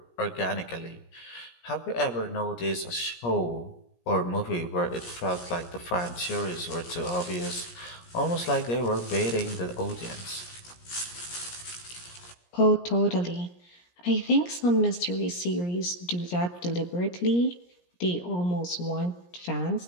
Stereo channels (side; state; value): right; late; 17 ms